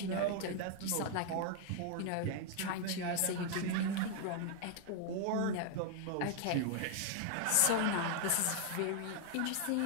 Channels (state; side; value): different; both; correlation 0.00